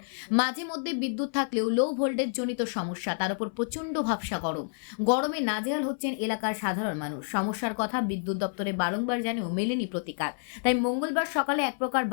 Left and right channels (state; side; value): silent; right; 55 dB below the other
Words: মাঝে মধ্যে বিদ্যুৎ থাকলেও লো ভোল্টেজ জনিত সমস্যা, তার উপর প্রচণ্ড ভাবসা গরমে নাজেহাল হচ্ছেন এলাকার সাধারণ মানুষ। সমস্যার কথা বিদ্যুৎ দপ্তরে বারংবার জানিয়েও মেলেনি প্রতিকার। তাই মঙ্গলবার সকালে এক প্রকার